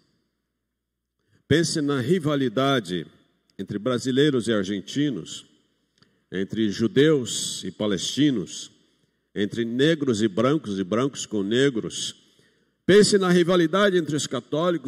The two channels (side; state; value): both; identical; correlation 1.00